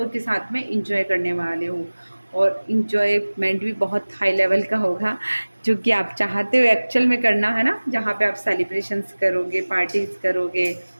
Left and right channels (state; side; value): inverted; both; correlation -1.00